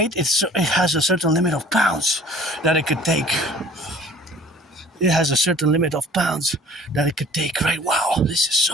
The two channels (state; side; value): normal; both; correlation 0.50